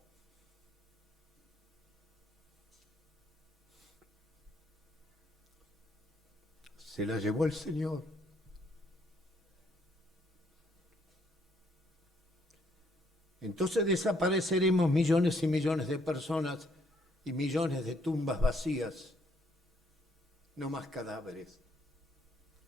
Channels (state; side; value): normal; both; correlation 0.69